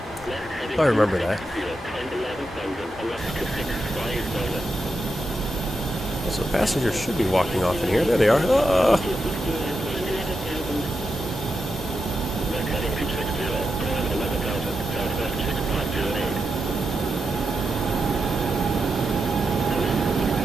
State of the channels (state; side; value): normal; both; correlation 0.87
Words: I remember that. So passengers should be walking off in here. There they are.